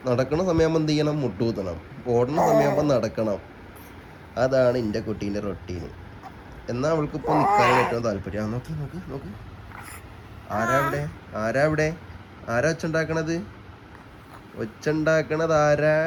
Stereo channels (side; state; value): both; identical; correlation 1.00